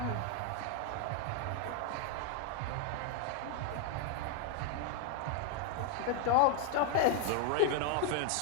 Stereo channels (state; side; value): different; both; correlation 0.00